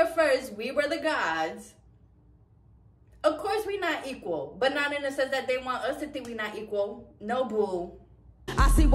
first. We were the gods. Of course we not equal. But not in the sense that they want us to think we not equal. No, boo. I see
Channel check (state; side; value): identical; both; correlation 1.00